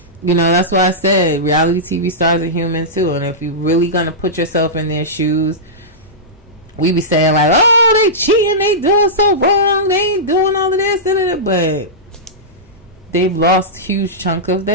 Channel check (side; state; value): both; normal; correlation -0.14